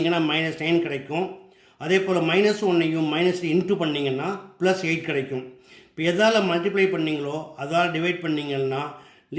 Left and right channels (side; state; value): both; identical; correlation 1.00